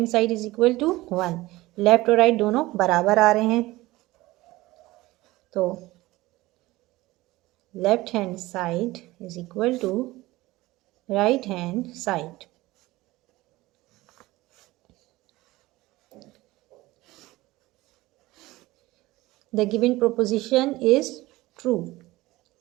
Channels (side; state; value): left; quieter; 18.9 dB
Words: side is equal to 1। Left और राइट दोनों बराबर आ रहे हैं, तो left hand side is equal to right hand side. The given proposition is true.